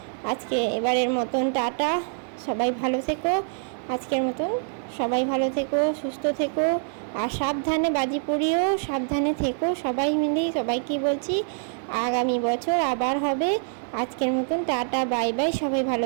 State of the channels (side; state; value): left; silent; 55 dB below the other